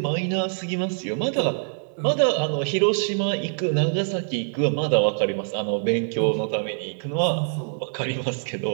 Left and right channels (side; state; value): left; silent; 58 dB below the other